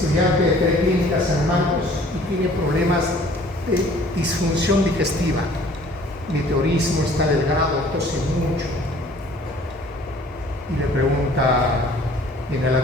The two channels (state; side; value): normal; both; correlation 0.53